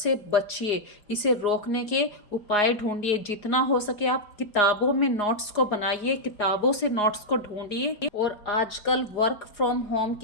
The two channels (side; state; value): right; late; 4.8 ms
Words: बचिए, इसे रोकने के उपाय ढूंढिए। जितना हो सके आप किताबों में नोट्स को बनाइए, किताबों से नोट्स को ढूंढिए। और आजकल वर्क फ्रॉम होम